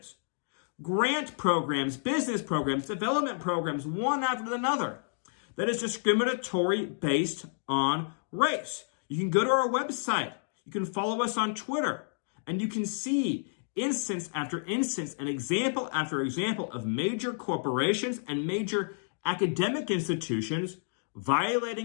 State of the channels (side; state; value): right; silent; digital silence